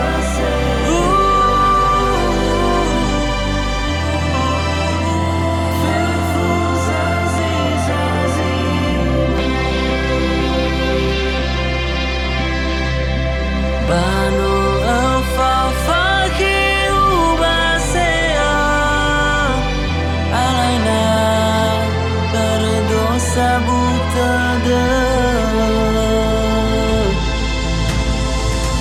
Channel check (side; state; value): both; identical; correlation 1.00